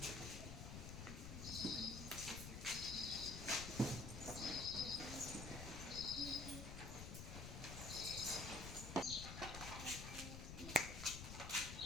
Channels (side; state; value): left; noise; rumble, 7 dB below the sound